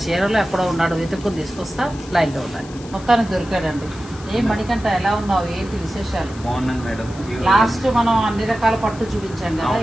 చీరలో ఎక్కడో ఉన్నాడో వెతుక్కుని తీసుకొస్తా. లైన్ లో ఉండాలి. మొత్తానికి దొరికాడండి. ఏం మణికంఠ, ఎలా ఉన్నావు, ఏంటి విశేషాలు? బాగున్నాను మేడం. లాస్ట్ మనం అన్ని రకాల పట్టు చూపించాం కదా,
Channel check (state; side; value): noise; left; hiss, 20 dB below the sound